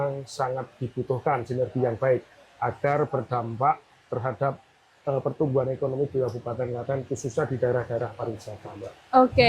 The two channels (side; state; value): both; identical; correlation 1.00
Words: sangat dibutuhkan sinergi yang baik agar berdampak terhadap pertumbuhan ekonomi di Kabupaten Klaten, khususnya di daerah-daerah pariwisata, Mbak.